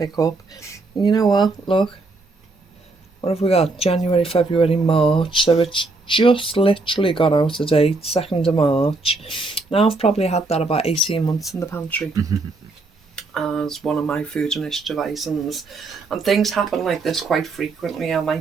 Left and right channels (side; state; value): left; quieter; 3.5 dB